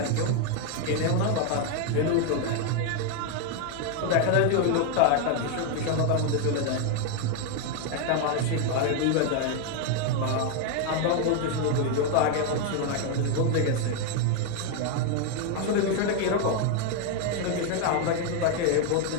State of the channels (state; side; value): different; both; correlation 0.01